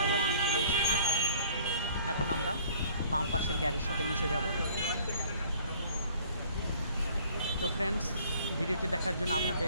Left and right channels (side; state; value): both; inverted; correlation -0.55